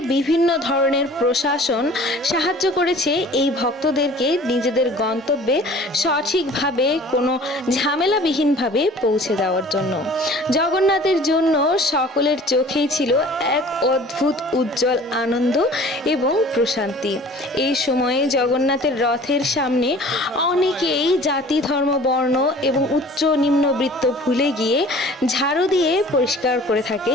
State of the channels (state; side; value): normal; both; correlation 0.47